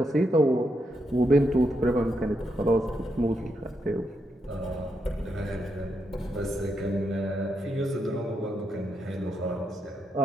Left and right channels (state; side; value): normal; both; correlation 0.81